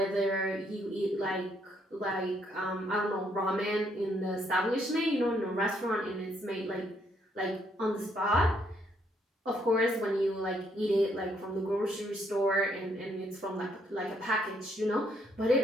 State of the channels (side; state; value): both; normal; correlation 0.71